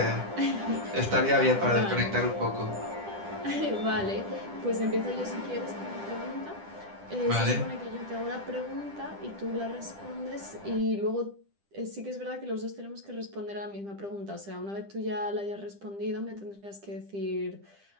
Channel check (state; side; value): late; left; 10 ms